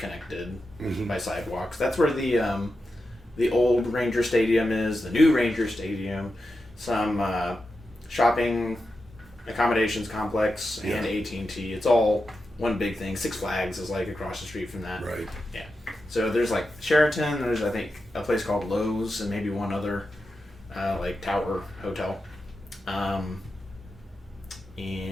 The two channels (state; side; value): normal; both; correlation 0.89